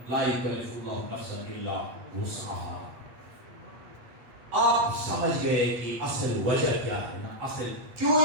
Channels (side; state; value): left; late; 8.3 ms